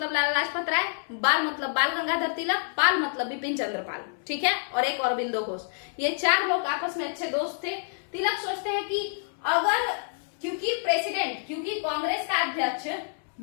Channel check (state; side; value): silent; right; 60 dB below the other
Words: लाला लाजपत राय, बाल मतलब बाल गंगाधर तिलक, पाल मतलब बिपिन चंद्र पाल, ठीक है, और एक अरविंदो घोष, ये चार लोग आपस में अच्छे दोस्त थे। तिलक सोचते हैं कि अगर, क्योंकि कांग्रेस का अध्यक्ष